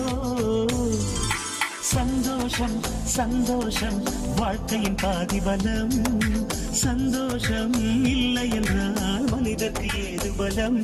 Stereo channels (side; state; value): both; identical; correlation 1.00